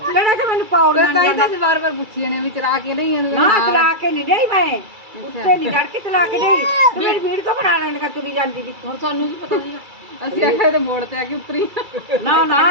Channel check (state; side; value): late; left; 2.3 ms